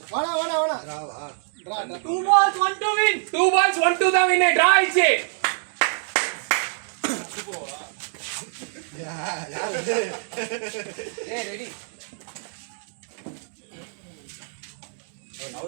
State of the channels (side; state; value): left; silent; 62 dB below the other